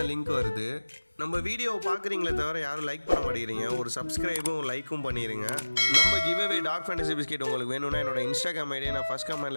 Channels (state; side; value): inverted; both; correlation -1.00